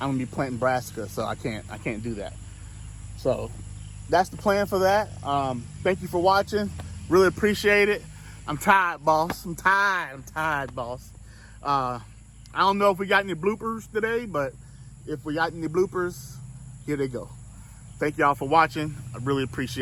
be planting brassica, so I can't do that. So that's the plan for that. Thank you for watching. Really appreciate it. I'm tired, boss. I'm tired, boss. I don't know if we got any bloopers today, but if we got any bloopers, here they go. Thank y'all for watching. I really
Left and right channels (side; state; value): both; identical; correlation 1.00